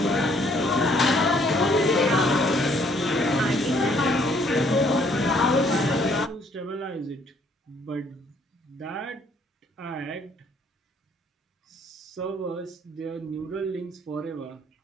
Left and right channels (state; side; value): normal; both; correlation 0.64